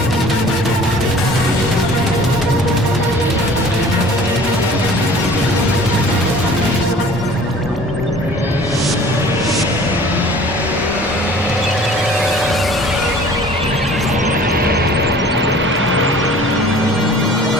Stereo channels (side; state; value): both; normal; correlation 0.48